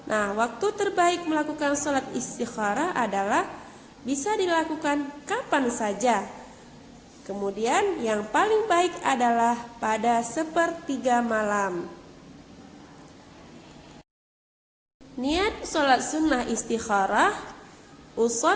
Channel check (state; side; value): identical; both; correlation 1.00